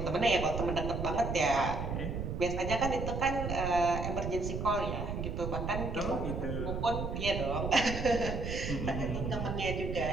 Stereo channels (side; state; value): right; noise; rumble, 4 dB below the sound